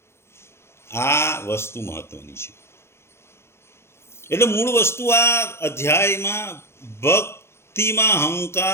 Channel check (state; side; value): late; right; 0.12 ms